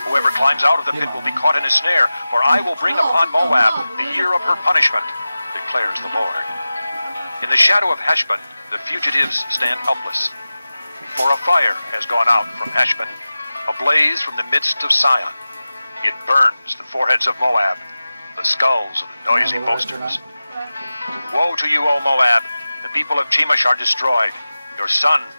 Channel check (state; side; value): inverted; both; correlation -0.96